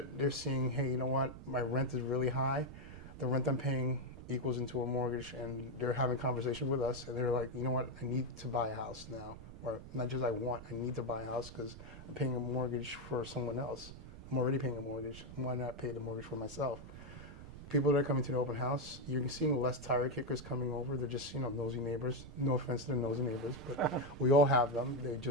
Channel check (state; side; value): noise; right; rumble, 14 dB below the sound